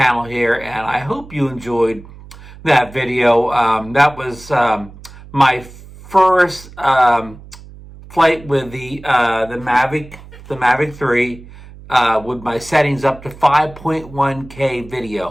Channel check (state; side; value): noise; right; hum, 18 dB below the sound